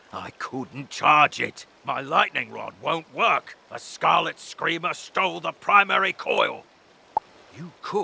I couldn't charge it. My lightning rod won't work. A Scarlet Screamer stole the primary coil. You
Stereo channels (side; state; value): both; identical; correlation 1.00